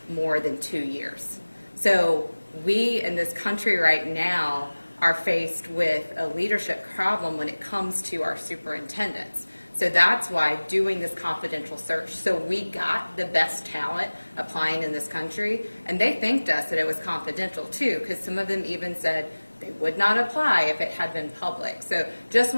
more than 2 years. So we in this country right now are faced with a leadership problem when it comes to our superintendents. So that's why doing this confidential search, so we got the best talent applying in this country, and they thanked us that it was confidential too, because some of them even said they would not apply if it had been public. So just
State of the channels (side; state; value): both; inverted; correlation -1.00